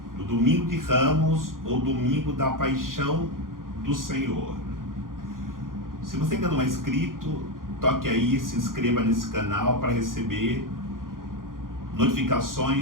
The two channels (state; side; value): late; left; 0.90 ms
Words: do Domingo de Ramos ou Domingo da Paixão do Senhor. Se você ainda não é inscrito, toque aí, se inscreva nesse canal para receber